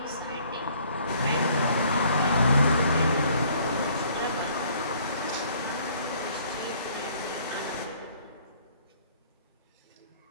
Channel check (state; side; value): inverted; both; correlation -0.59